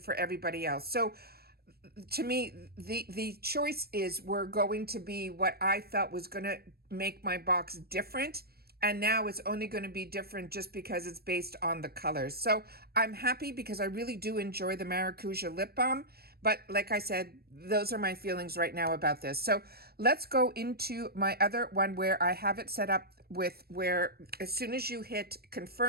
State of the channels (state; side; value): late; left; 0.45 ms